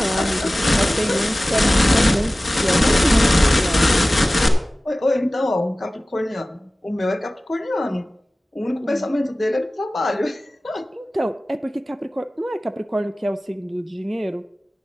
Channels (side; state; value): both; normal; correlation 0.97